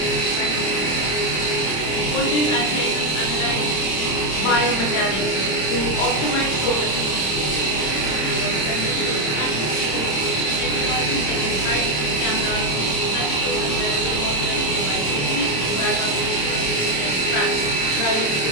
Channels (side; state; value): right; late; 26 ms